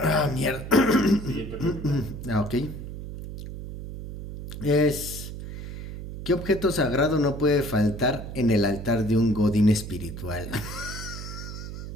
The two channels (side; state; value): right; noise; hum, 9 dB below the sound